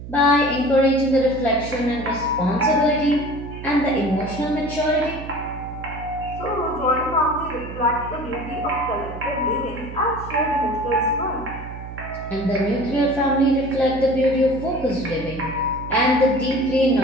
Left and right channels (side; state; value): right; noise; hum, 11 dB below the sound